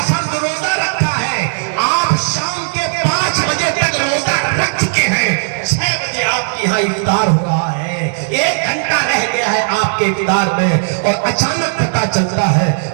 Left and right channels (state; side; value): silent; left; digital silence